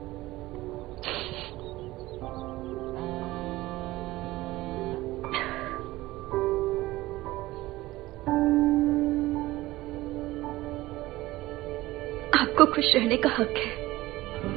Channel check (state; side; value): quieter; left; 18.1 dB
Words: आपको खुश रहने का हक है,